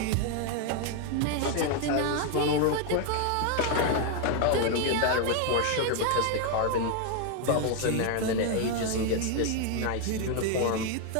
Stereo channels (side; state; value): both; different; correlation 0.01